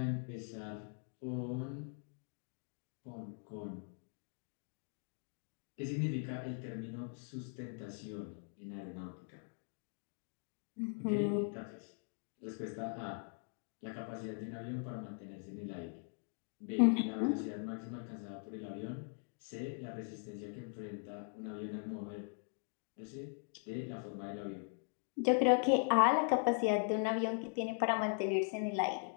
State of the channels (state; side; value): silent; right; 51 dB below the other